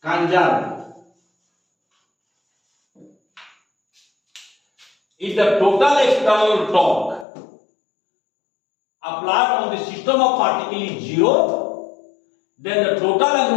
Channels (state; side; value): drops out; right; at 7.2 s